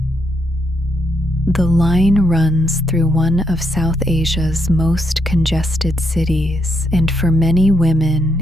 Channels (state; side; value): normal; both; correlation 0.77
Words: The line runs through one of South Asia's most congested cities, and for many